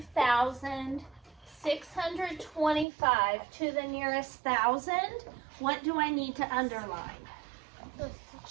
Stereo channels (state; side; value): drops out; left; at 2.9 s